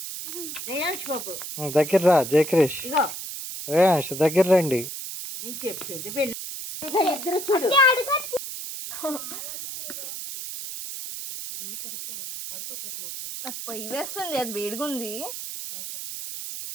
రేయాన్స్ బాబు దగ్గర రా. జయక్రిష్, ఇగో రేయాన్స్ దగ్గర రండి. నేను చెప్పేది ఇద్దరు చూడు. పొయ్యి వేస్తుంది, అది వేడిగా ఉంది.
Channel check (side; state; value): right; noise; hiss, 8 dB below the sound